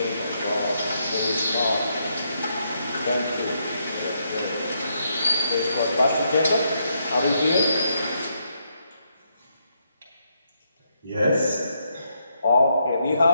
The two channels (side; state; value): both; inverted; correlation -0.78